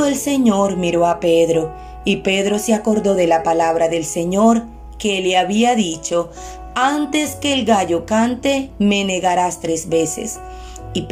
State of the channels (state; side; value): identical; both; correlation 1.00